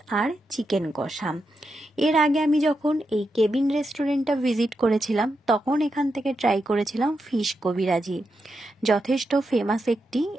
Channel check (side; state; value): both; normal; correlation 0.86